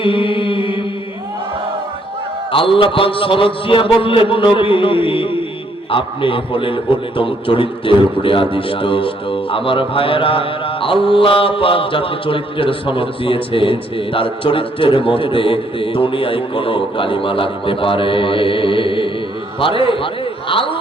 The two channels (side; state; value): both; normal; correlation 0.69